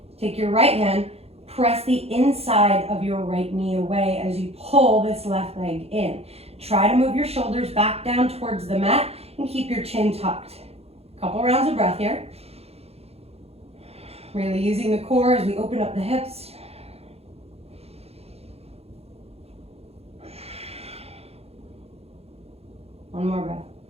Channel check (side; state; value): left; late; 0.29 ms